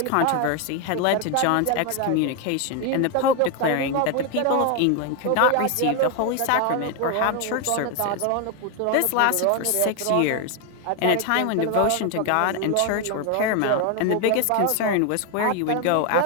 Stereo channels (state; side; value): different; both; correlation 0.01